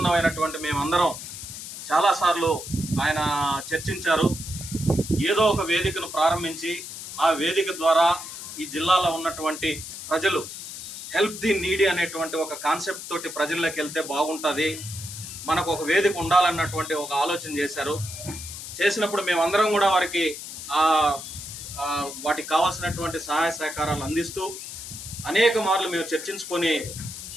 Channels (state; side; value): noise; left; hiss, 10 dB below the sound